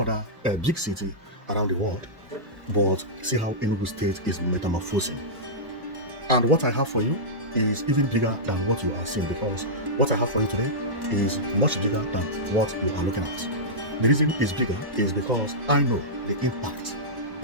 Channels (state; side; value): late; left; 1.1 ms